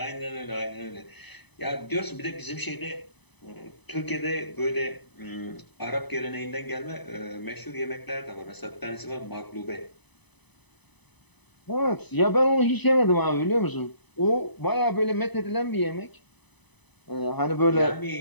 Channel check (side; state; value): right; late; 0.99 ms